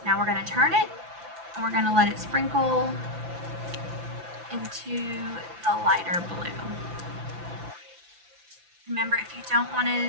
Now we're going to turn it, and we're going to let it sprinkle into the lighter blue. Remember, if you don't want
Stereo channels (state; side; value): late; left; 5.9 ms